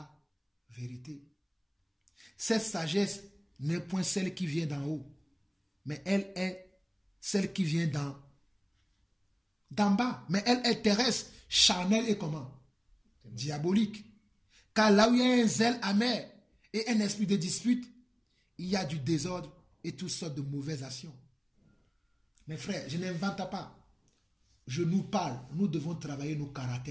vérité. Cette sagesse n'est point celle qui vient d'en haut, mais elle est celle qui vient d'en bas. Mais elle est terrestre, charnelle et comment? Diabolique. Car là où il y a un zèle amer et un esprit de dispute, il y a du désordre et toutes sortes de mauvaises actions. Mes frères, je n'invente pas. Je nous parle. Nous devons travailler nos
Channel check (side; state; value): both; identical; correlation 1.00